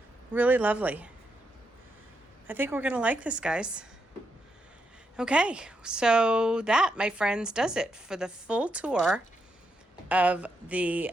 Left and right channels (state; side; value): normal; both; correlation 0.82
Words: Really lovely. I think we're going to like this, guys. Okay, so that, my friends, does it for the full tour of the